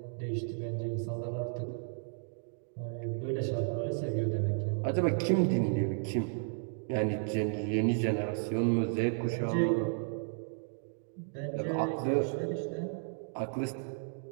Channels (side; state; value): left; silent; digital silence